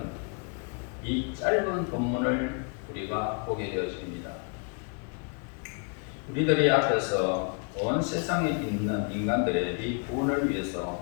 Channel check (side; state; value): right; quieter; 38.2 dB